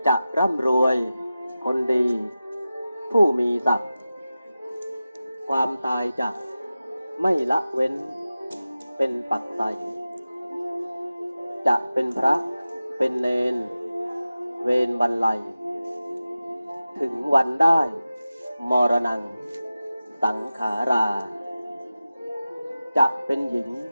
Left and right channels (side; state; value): both; inverted; correlation -0.95